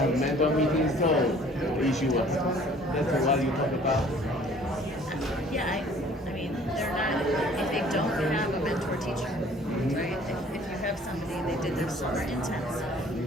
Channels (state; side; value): normal; both; correlation 0.54